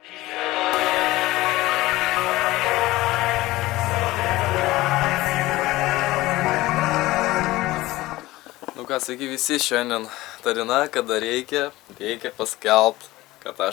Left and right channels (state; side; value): quieter; right; 18.3 dB